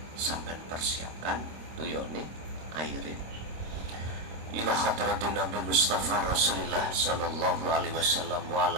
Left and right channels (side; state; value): left; late; 26 ms